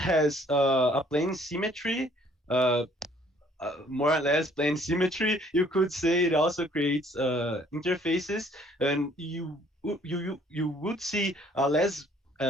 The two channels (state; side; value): normal; both; correlation 0.60